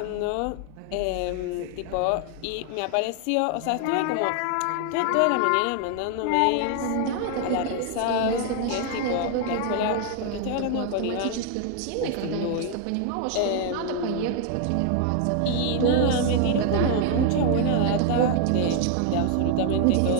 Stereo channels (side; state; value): both; different; correlation 0.00